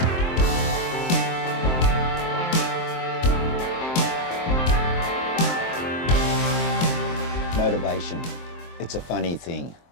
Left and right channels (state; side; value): late; right; 23 ms